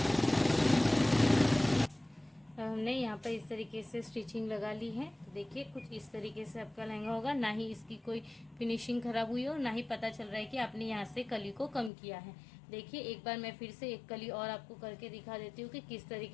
हमने यहाँ पर इस तरीके से स्टिचिंग लगा ली है। तो देखिए कुछ इस तरीके से आपका लहंगा होगा, ना ही इसकी कोई फिनिशिंग खराब हुई हो, ना ही पता चल रहा है कि आपने यहाँ से कली को कम किया है। देखिए एक बार मैं फिर से एक कली और आपको करके दिखा देती हूँ कि किस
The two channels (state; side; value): drops out; right; at 11.9 s